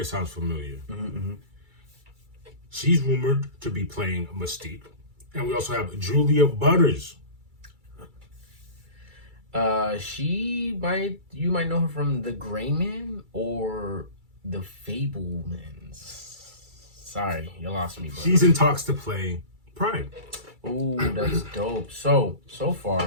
sounds familiar. She's rumored to be playing Mystique. And we also have Julia Butters. You might know her from The Gray Man or The Fablemans. Sorry, you lost me, bro. She's in talks to play Pride. Ooh, that's dope. So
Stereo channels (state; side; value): late; left; 2.3 ms